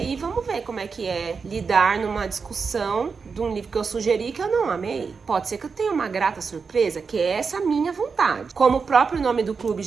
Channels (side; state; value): left; quieter; 5.2 dB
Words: vamos ver como é que é lidar numa discussão de um livro que eu sugeri que eu não amei. Pode ser que eu tenha uma grata surpresa, que é essa minha vontade. Como o próprio nome do clube